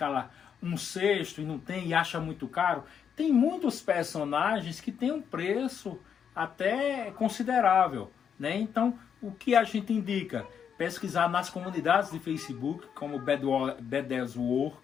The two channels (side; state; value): right; quieter; 7.7 dB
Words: 1/6 e não tem e acha muito caro, tem muitos personagens que tem um preço até considerável, né? Então, o que a gente indica? Pesquisar nas comunidades de Facebook, como Badass War,